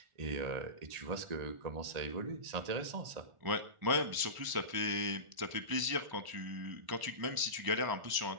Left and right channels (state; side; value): late; left; 1.0 ms